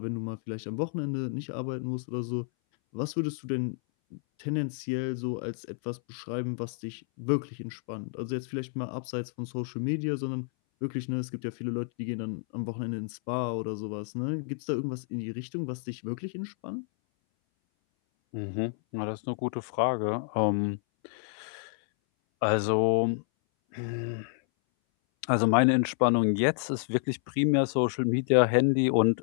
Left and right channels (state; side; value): silent; right; 58 dB below the other